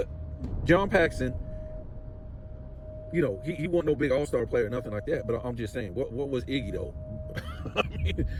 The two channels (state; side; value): identical; both; correlation 1.00